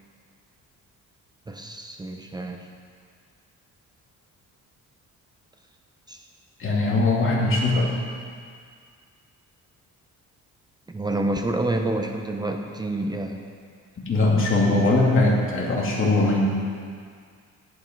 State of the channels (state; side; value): normal; both; correlation 0.58